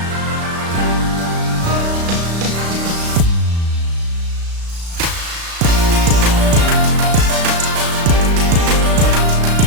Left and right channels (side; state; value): left; late; 36 ms